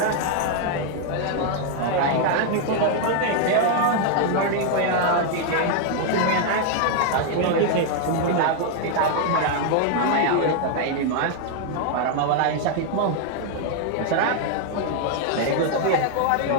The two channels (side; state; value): both; different; correlation 0.00